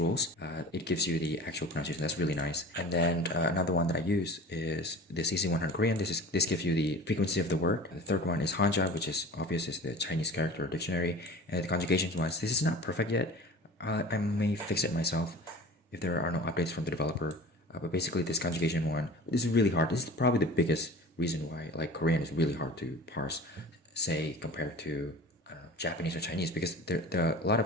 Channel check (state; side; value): normal; both; correlation 0.38